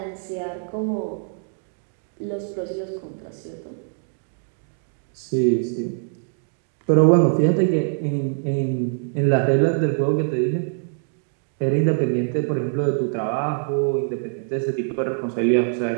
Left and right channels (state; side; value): silent; left; digital silence